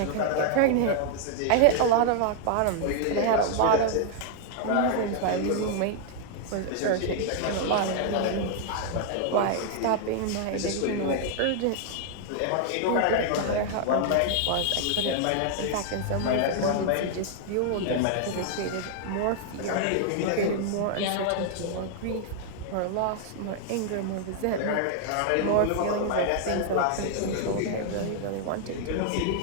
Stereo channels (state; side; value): different; both; correlation 0.00